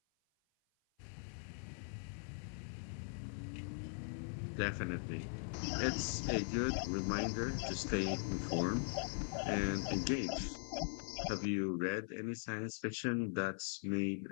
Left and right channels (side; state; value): right; silent; 50 dB below the other